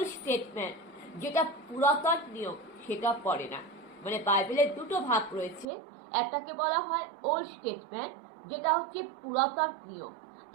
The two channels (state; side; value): drops out; left; at 5.7 s